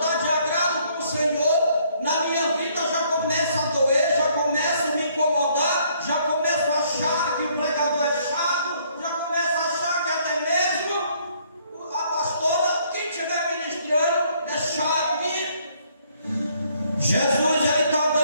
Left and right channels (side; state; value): both; inverted; correlation -0.66